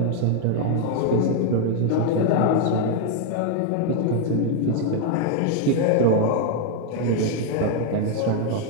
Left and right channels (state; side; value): different; both; correlation 0.01